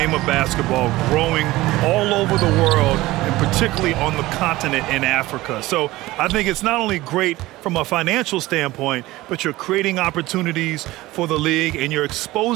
of basketball growing all over the world, and particularly on the continent in Africa. So I think it's not only great from a financial standpoint, but you're creating opportunities for the league and you're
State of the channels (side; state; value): left; quieter; 18.3 dB